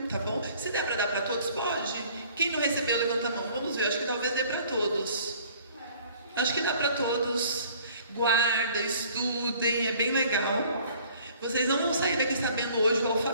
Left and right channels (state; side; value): inverted; both; correlation -0.54